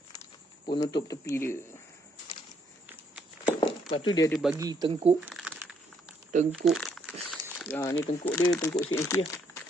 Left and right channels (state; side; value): normal; both; correlation 0.71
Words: Penutup tepi dia. Lepas tu dia ada bagi tengkuk. Ni tengkuk dia, tengkuk CNC lah.